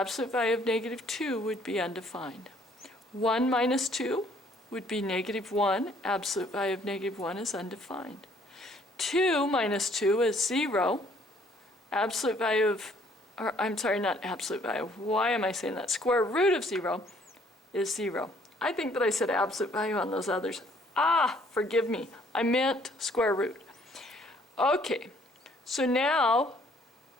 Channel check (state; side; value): normal; both; correlation 0.62